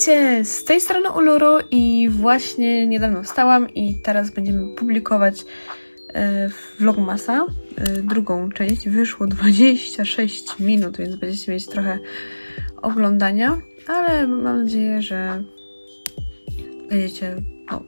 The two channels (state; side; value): inverted; both; correlation -1.00